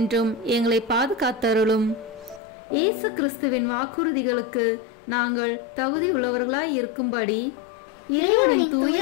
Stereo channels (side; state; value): right; drops out; at 2.4 s